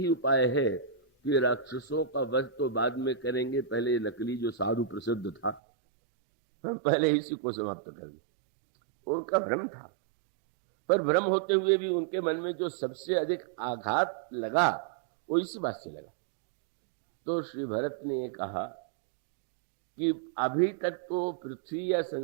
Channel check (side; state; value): left; drops out; at 5.6 s